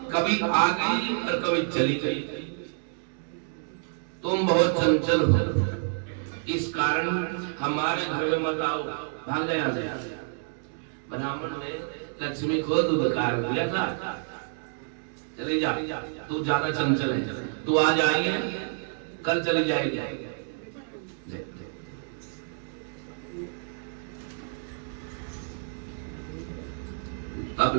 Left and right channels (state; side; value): silent; left; digital silence